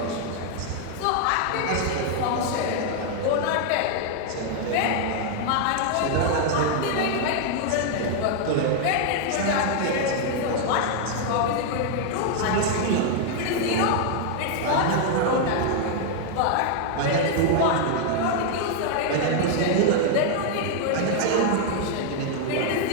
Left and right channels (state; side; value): different; both; correlation 0.00